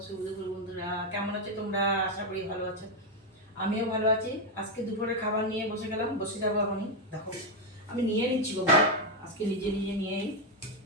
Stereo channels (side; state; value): both; normal; correlation 0.04